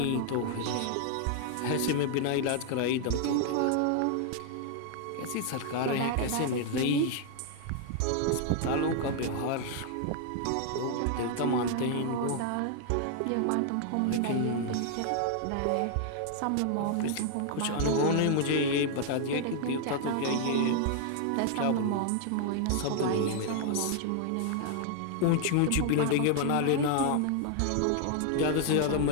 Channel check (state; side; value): different; both; correlation 0.00